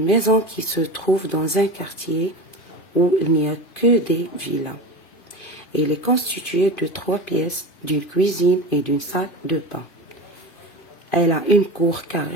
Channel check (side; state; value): right; late; 2.5 ms